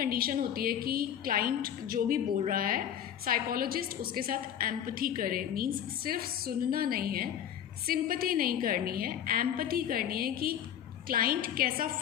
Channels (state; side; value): quieter; right; 9.7 dB